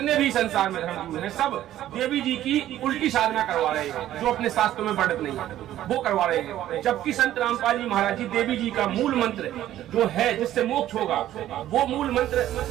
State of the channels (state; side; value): quieter; left; 12.9 dB